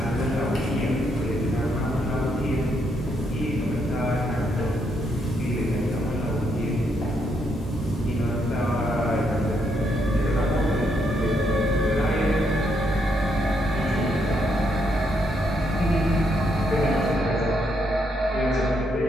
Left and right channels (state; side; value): normal; both; correlation 0.76